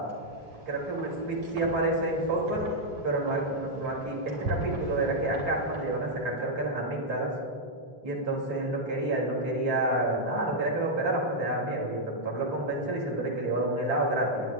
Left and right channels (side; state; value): left; late; 2.7 ms